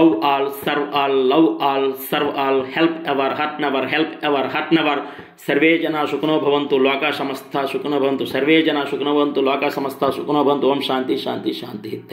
all, serve all, love all, serve all, help ever, hurt never, help ever, hurt never. Survey జనా సుఖినో భవంతు, లోకా సమస్తా సుఖినో భవంతు. సర్వే జనా సుఖినో భవంతు, లోకా సమస్తా సుఖినో భవంతు. ఓం శాంతి శాంతి శాంతి.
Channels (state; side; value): identical; both; correlation 1.00